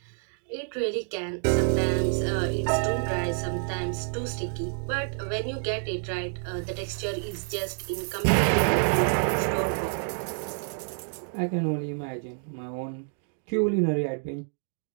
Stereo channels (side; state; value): left; silent; 59 dB below the other